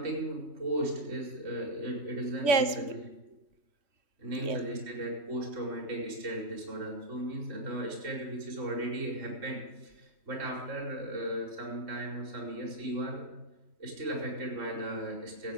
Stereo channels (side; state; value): left; late; 3.1 ms